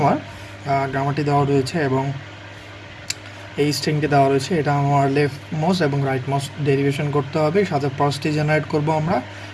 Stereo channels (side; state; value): both; identical; correlation 1.00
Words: গ্রামারটি দেওয়া রয়েছে এবং এই স্ট্রিংটি দেওয়া রয়েছে। এটা আমার লেফট মোস্ট এবং রাইট মোস্ট ডেরিভেশন করতে হবে, সাথে পার্সটি জেনারেট করব আমরা